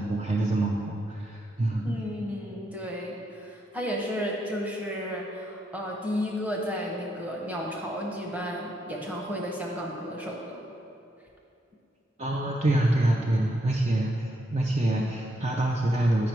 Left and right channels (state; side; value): normal; both; correlation 0.78